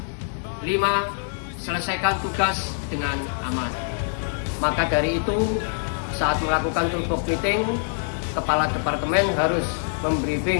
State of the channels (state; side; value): silent; right; 62 dB below the other